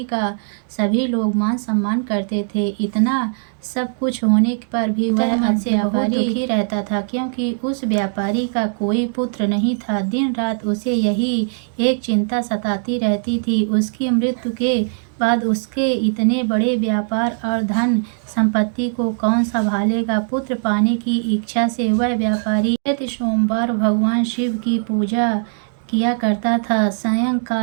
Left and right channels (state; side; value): silent; left; digital silence